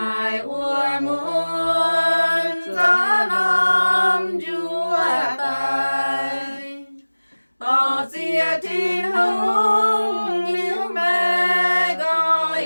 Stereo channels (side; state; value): both; inverted; correlation -1.00